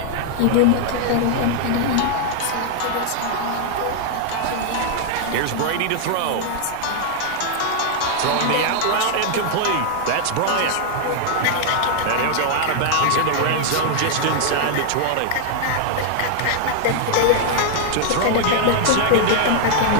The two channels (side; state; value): both; different; correlation 0.00